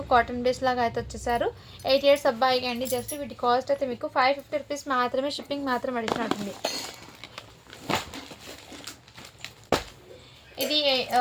కాటన్ బేస్ లాగా అయితే వచ్చేసారు. 8 ఇయర్స్ అబ్బాయికి అండి. జస్ట్ వీటి కాస్ట్ అయితే మీకు 550 రూపీస్ మాత్రమే. షిప్పింగ్ మాత్రం అడిగినట్టుంది. ఇది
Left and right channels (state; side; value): identical; both; correlation 1.00